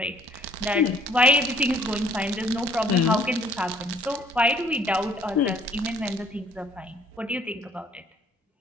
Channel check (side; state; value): both; normal; correlation 0.60